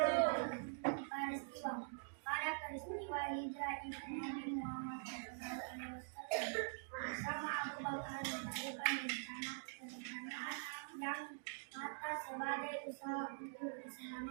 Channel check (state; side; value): silent; left; digital silence